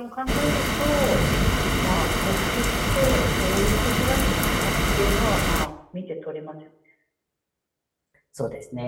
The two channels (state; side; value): identical; both; correlation 1.00